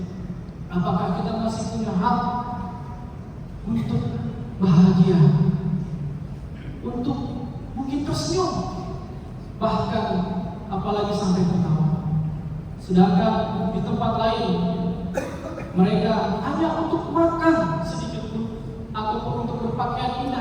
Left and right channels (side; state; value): both; identical; correlation 1.00